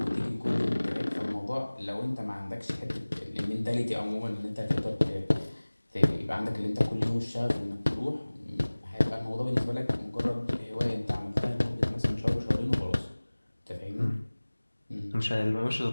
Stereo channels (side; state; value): both; inverted; correlation -1.00